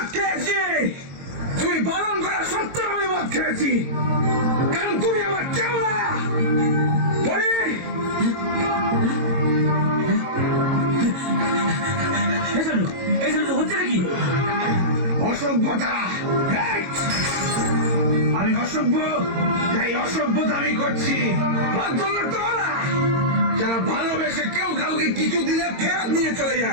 খেয়েছি, তুমি বারণ করা সত্ত্বেও আমি মদ খেয়েছি, কারণ তুমি আমার কেউ না। হচ্ছে নাকি অসভ্যতা? আমি অসভ্য? এই অসভ্যতা আমি করছি। ভদ্রলোক তো ওরা যারা ভালোবেসে কেউ কাউকে কিছু দিলে ফেরত নিয়ে চলে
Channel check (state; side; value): late; left; 22 ms